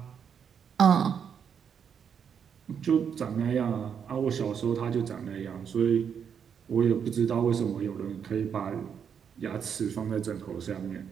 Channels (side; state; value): left; quieter; 7.5 dB